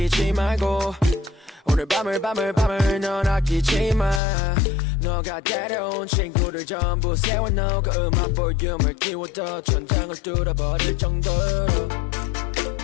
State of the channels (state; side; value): drops out; right; at 4.2 s